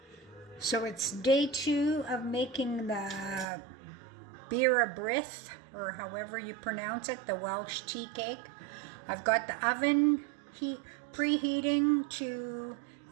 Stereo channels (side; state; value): left; drops out; at 3.5 s